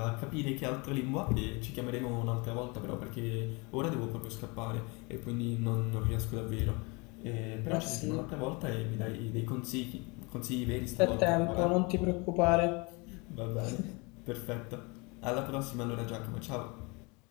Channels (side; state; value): right; quieter; 28.6 dB